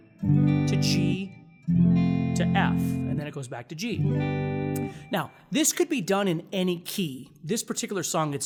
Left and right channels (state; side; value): identical; both; correlation 1.00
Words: G to F, and then it goes back to G. Now, this could be done in any key. This particular song,